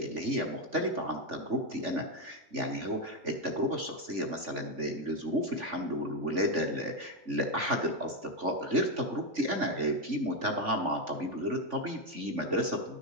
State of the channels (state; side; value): late; left; 3.5 ms